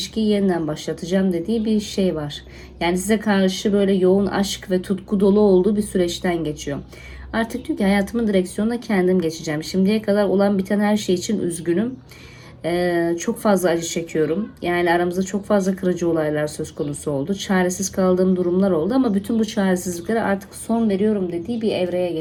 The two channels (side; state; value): both; identical; correlation 1.00